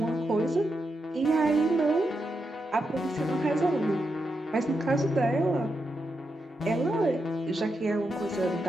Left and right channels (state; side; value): normal; both; correlation 0.85